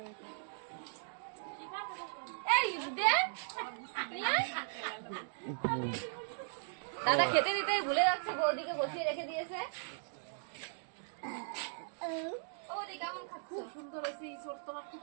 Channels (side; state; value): left; silent; digital silence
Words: হয়েছে। এই দে দাদা খেতে দিতে ভুলে যাচ্ছে, বৌদিকে বসিয়ে রেখে দিয়েছে। বৌদি কেমন খাচ্ছ? খুব সুন্দর হয়েছে, ইঁচড় তোমার খুব